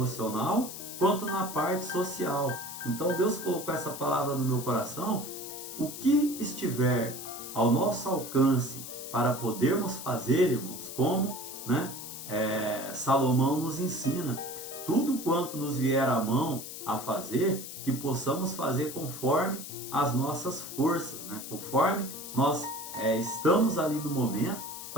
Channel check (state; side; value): noise; left; hiss, 10 dB below the sound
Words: quanto na parte social. Então Deus colocou essa palavra no meu coração. O que estiver ao nosso alcance para podermos fazer, irmãos, como, né, Salomão nos ensina, tudo quanto nos vier à mão a fazer, que possamos fazer conforme as nossas forças, né? Conforme nós estamos ali no momento